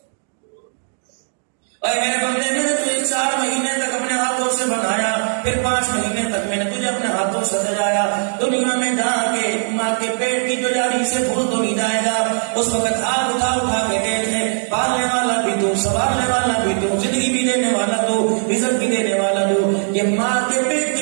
اور میرے بندے میں نے تجھے 4 مہینے تک اپنے ہاتھوں سے بنایا، پھر 5 مہینے تک میں نے تجھے اپنے ہاتھوں سے سجایا، دنیا میں جا کے ماں کے پیٹ کی جو جاری سے بھول تو نہیں جائے گا، اس وقت ہاتھ اٹھا اٹھا کے دیکھے، پالنے والا بھی تو، سنبھالنے والا بھی تو، زندگی بھی دینے والا تو، رزق بھی دینے والا تو، یہ ماں کے پیٹ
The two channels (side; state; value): left; silent; digital silence